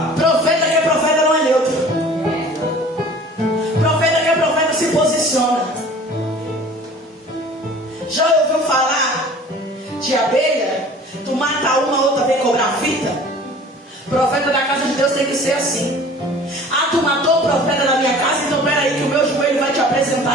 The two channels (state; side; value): normal; both; correlation 0.46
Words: Profeta que é profeta não é neutro. Profeta que é profeta se posiciona. Já ouviu falar de abelha? Tu mata uma, outra vem cobrar fita? Profeta da casa de Deus tem que ser assim. Ah, tu matou o profeta da minha casa, então peraí que o meu joelho vai te